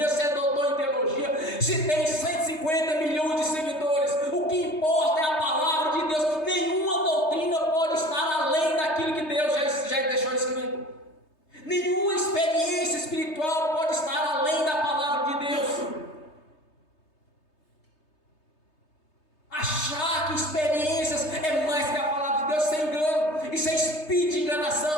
se é doutor em teologia, se tem 150 milhões de seguidores. O que importa é a palavra de Deus. Nenhuma doutrina pode estar além daquilo que Deus já deixou escrito. Nenhuma experiência espiritual pode estar além da palavra de Deus. Achar que experiências é mais que a palavra de Deus, sem engano, isso é espírito de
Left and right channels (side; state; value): right; late; 3.3 ms